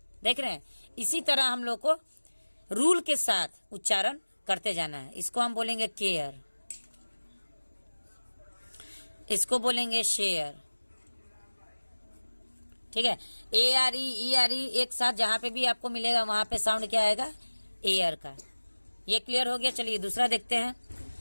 देख रहे हैं, इसी तरह हम लोग को रूल के साथ उच्चारण करते जाना है। इसको हम बोलेंगे केयर, इसको बोलेंगे शेयर। ठीक है, ARE ERE एक साथ जहां पे भी आपको मिलेगा वहां पे साउंड क्या आएगा, एयर का। ये क्लियर हो गया। चलिए दूसरा देखते हैं।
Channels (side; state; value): both; inverted; correlation -1.00